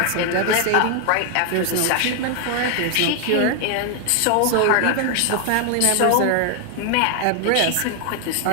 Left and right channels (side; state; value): both; different; correlation 0.00